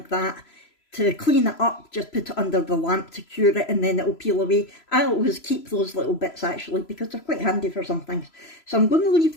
that. To clean it up, just put it under the lamp to cure it, and then it'll peel away. I always keep those little bits actually, because they're quite handy for some things. So I'm going to leave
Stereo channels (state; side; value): late; right; 3.0 ms